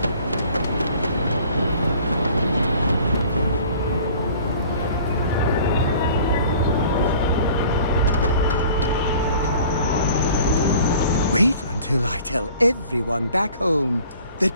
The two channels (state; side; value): inverted; both; correlation -0.49